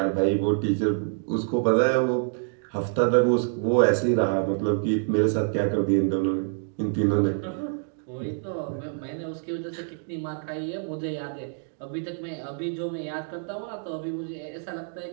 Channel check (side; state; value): left; silent; digital silence